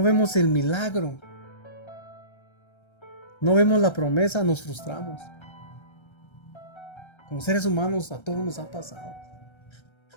vemos el milagro, no vemos la promesa, nos frustramos. Como seres humanos a todos nos ha pasado.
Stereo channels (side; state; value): right; late; 1.3 ms